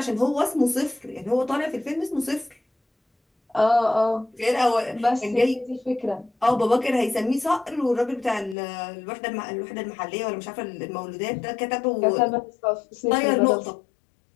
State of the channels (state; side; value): drops out; right; at 8.6 s